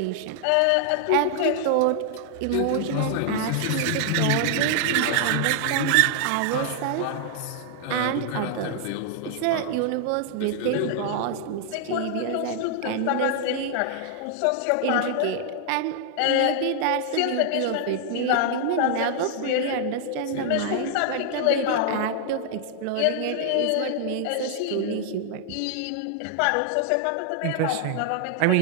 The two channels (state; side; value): different; both; correlation -0.01